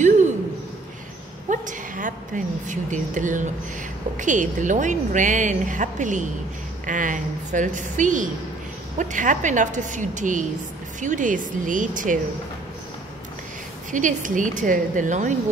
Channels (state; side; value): quieter; left; 3.1 dB